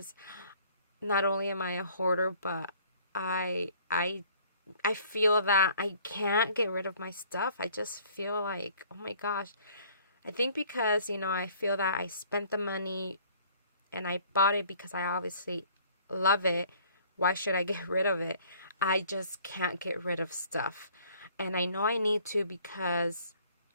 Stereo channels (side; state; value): both; inverted; correlation -0.56